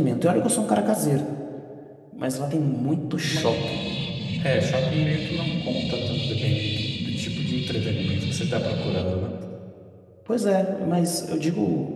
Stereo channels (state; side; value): identical; both; correlation 1.00